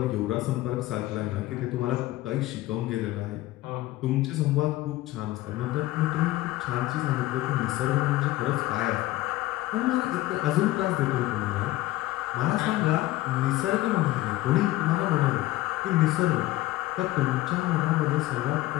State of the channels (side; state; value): right; quieter; 16.8 dB